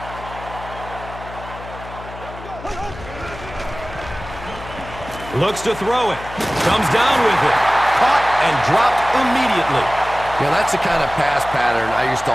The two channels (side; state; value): left; noise; hum, 14 dB below the sound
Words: Looks to throw it. Comes down with it. Caught and dropped immediately. Yeah, that's the kind of pass pattern I used to